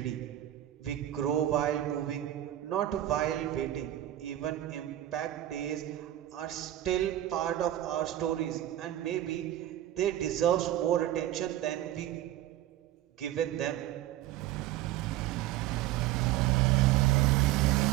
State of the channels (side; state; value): left; quieter; 13.4 dB